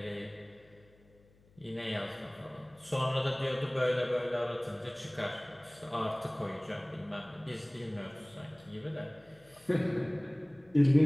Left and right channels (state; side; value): noise; left; hum, 29 dB below the sound